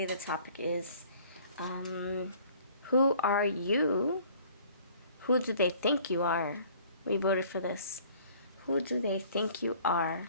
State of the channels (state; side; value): inverted; both; correlation -0.54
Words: the topic is who are you? Who do they think you are? We voted for this. Who do they think you are